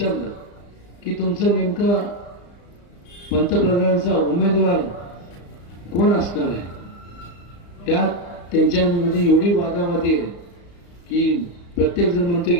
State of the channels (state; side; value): late; right; 35 ms